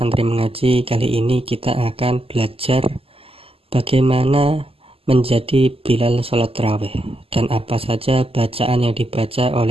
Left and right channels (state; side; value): late; left; 0.28 ms